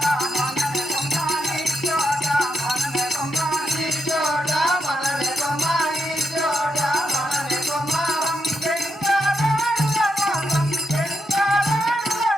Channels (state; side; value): normal; both; correlation 0.82